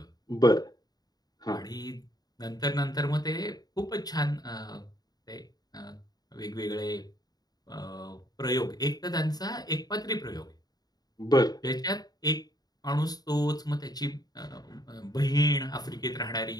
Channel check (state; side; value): late; right; 0.19 ms